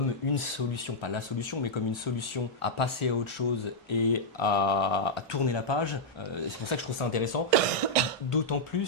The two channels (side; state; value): both; normal; correlation -0.05